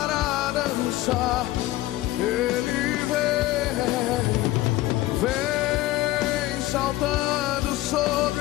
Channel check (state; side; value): quieter; right; 17.0 dB